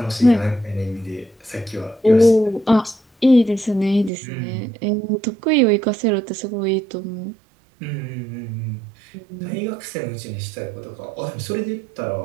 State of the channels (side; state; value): left; drops out; at 4.1 s